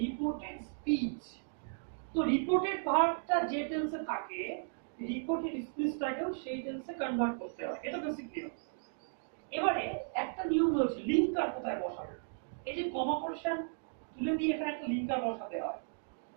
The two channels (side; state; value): left; silent; digital silence